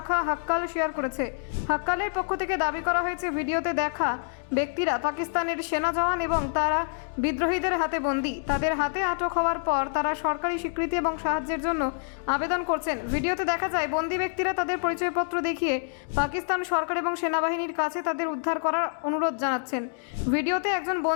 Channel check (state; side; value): silent; right; digital silence